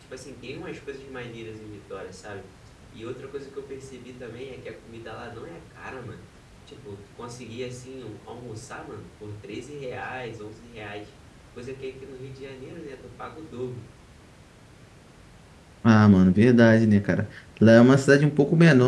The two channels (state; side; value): identical; both; correlation 1.00